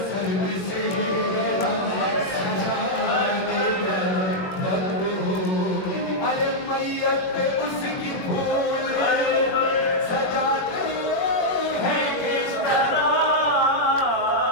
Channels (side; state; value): right; late; 21 ms